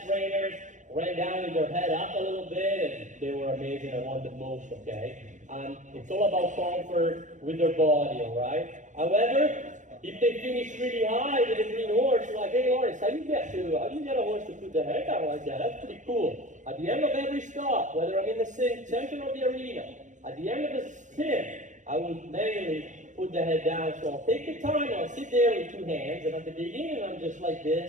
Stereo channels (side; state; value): left; late; 0.36 ms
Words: trainers ran down with their head up a little bit, and they were amazing. I want the most, okay? It's all about comfort with their body, all right? However, if they finish really high with a green horse, like, hey, Loris, how do you get a horse to put the head down like that? That's pretty cool. At the end of every stop, whether I'm in the center of the arena, at the end of the spin, I will manually put the head down. So I'll take the time, I'll sit there with two hands, and at the beginning I'm just like